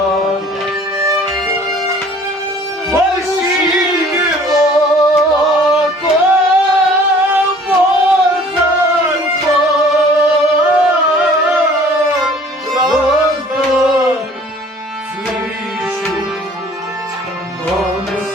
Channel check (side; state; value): both; normal; correlation 0.52